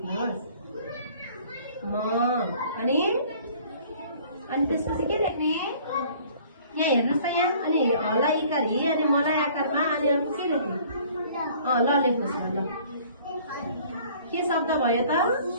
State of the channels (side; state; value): both; inverted; correlation -0.53